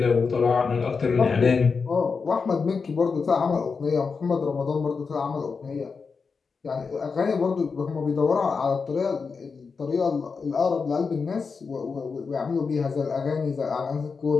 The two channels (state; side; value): quieter; right; 5.1 dB